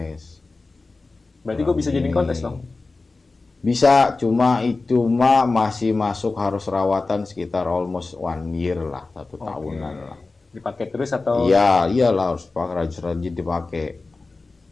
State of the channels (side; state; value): right; quieter; 3.6 dB